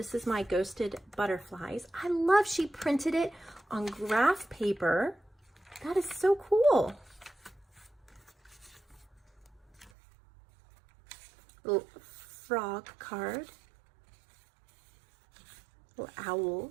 is my ghosted butterflies. I love she printed it on graph paper. That is so cool. Little frog card. Little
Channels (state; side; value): drops out; left; at 9.9 s